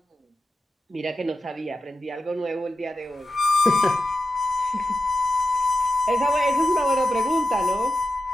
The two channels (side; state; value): both; normal; correlation 0.90